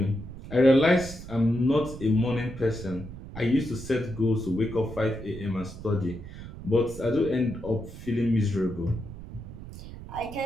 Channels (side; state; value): right; noise; rumble, 12 dB below the sound